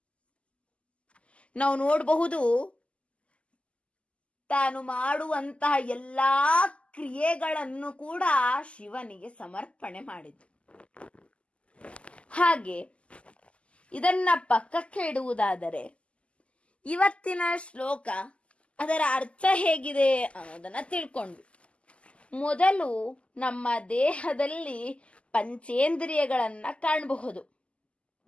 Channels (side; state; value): right; late; 0.057 ms